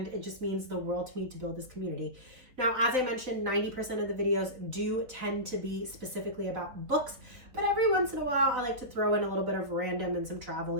it just means the world to me to build this community. Now, as I mentioned, 90% of the videos do tend to be specifically about books, but every once in a a while, I like to throw in a little bit of random and some travel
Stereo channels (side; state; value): left; late; 3.9 ms